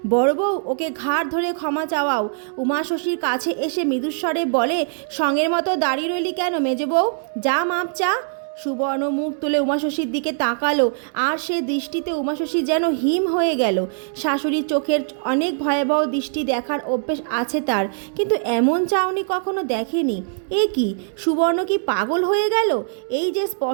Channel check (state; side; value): silent; left; digital silence